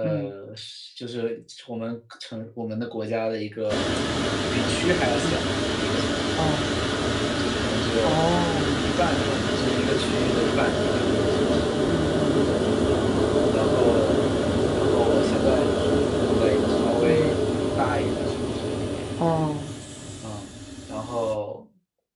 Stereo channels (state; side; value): identical; both; correlation 1.00